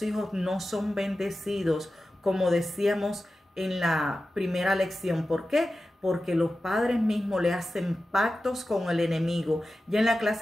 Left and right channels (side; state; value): both; normal; correlation 0.93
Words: hijos no son bendecidos, como decíamos en la primera lección. ¿Por qué? Porque los padres mismos le hacen pactos con el enemigo. Ya en la